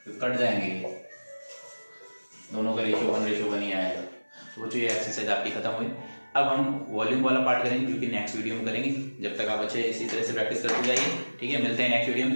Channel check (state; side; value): inverted; both; correlation -1.00